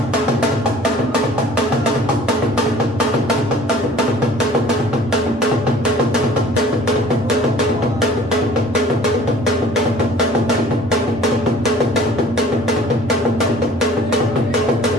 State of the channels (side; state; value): both; normal; correlation 0.50